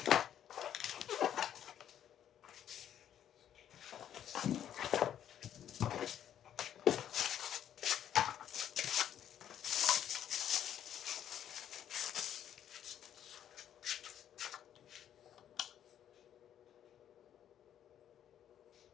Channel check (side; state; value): right; quieter; 10.2 dB